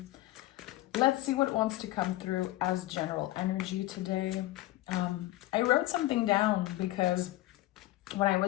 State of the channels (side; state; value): right; quieter; 16.9 dB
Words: Let's see what wants to come through as general energy today. I wrote something down because when I